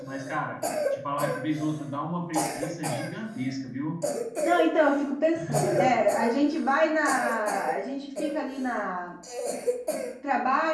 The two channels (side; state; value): both; identical; correlation 1.00